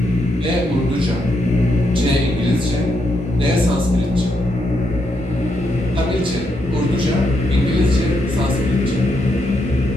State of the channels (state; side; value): normal; both; correlation 0.79